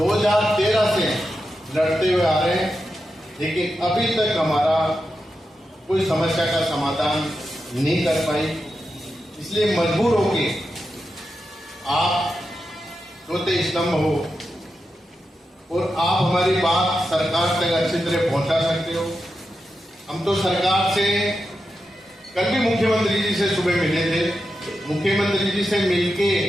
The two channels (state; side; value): normal; both; correlation 0.88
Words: से लड़ते हुए आ रहे हैं, लेकिन अभी तक हमारा कोई समस्या का समाधान नहीं कर पाई। इसलिए मजबूर होके आप रोते स्तंभ हो और आप हमारी बात सरकार तक अच्छी तरह पहुंचा सकते हो। हम तो सरकार से कल भी मुख्यमंत्री जी से सुबह मिले थे। मुख्यमंत्री जी से मिलके